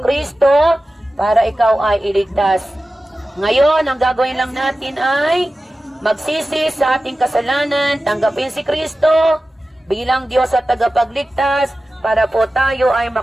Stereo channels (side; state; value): both; normal; correlation 0.95